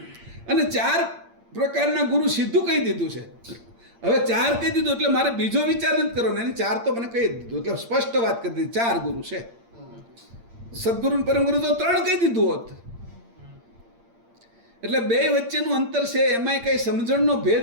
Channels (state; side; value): late; left; 8.7 ms